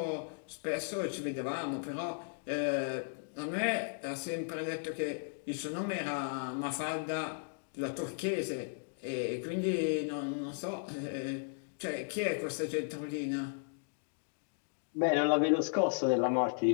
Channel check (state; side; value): silent; right; digital silence